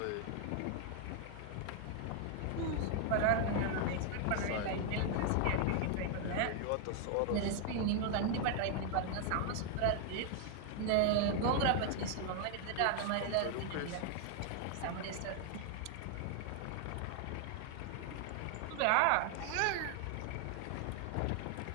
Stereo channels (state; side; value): different; both; correlation 0.00